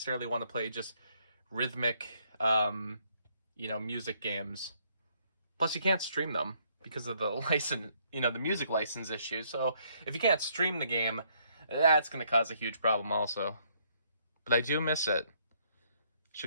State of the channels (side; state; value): both; inverted; correlation -0.69